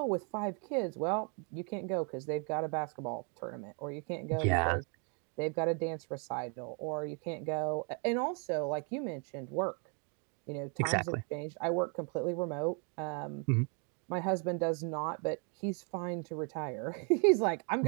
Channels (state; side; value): quieter; left; 38.5 dB